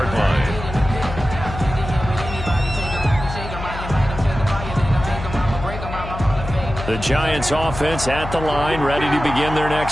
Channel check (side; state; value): left; noise; hum, 9 dB below the sound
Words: line. The Giants offense at the line, ready to begin their